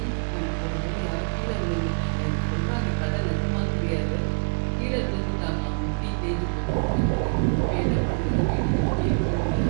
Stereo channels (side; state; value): left; silent; digital silence